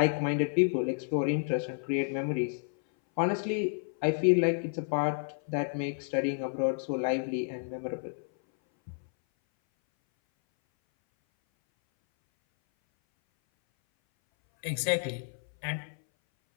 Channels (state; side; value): silent; right; 58 dB below the other